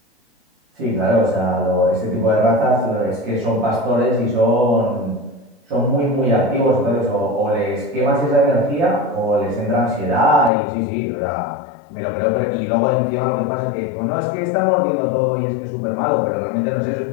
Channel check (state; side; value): drops out; right; at 10.5 s